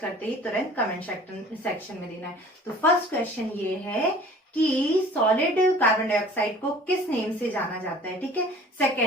ही तुरंत कमेंट सेक्शन में देना है। तो फर्स्ट क्वेश्चन ये है कि सॉलिड कार्बन डाइऑक्साइड को किस नेम से जाना जाता है? ठीक है।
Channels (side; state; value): both; normal; correlation 0.48